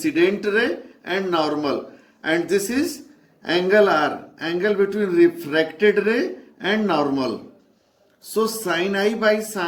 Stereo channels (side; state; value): both; identical; correlation 1.00